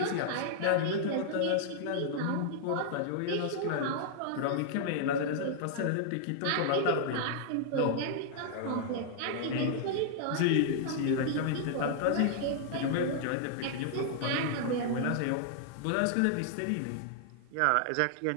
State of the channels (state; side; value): different; both; correlation -0.01